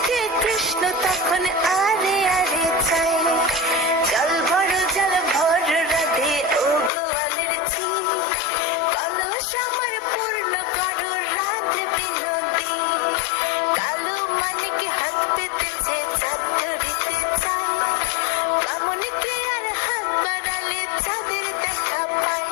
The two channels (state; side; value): drops out; right; at 6.9 s